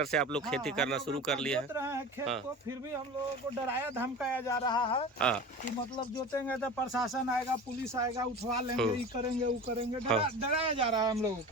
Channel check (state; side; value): normal; both; correlation 0.34